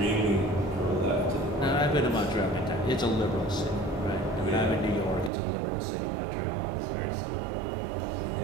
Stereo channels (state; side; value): drops out; left; at 5.3 s